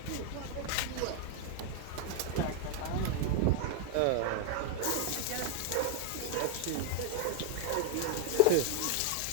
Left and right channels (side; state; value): both; different; correlation 0.00